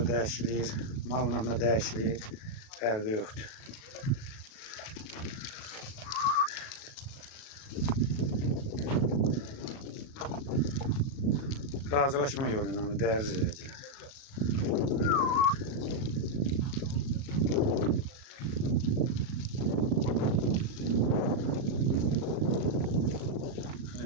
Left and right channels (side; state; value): right; late; 37 ms